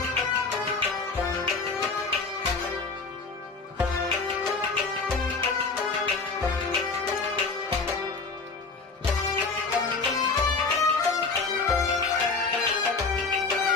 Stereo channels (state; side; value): quieter; right; 4.2 dB